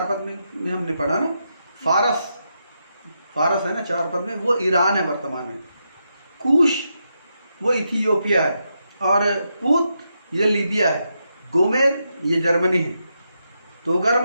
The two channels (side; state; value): both; inverted; correlation -0.84